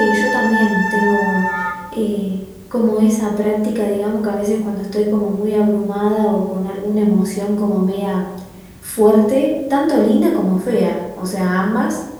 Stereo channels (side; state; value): both; identical; correlation 1.00